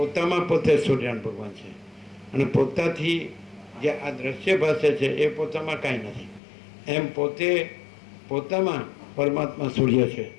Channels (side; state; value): right; drops out; at 6.4 s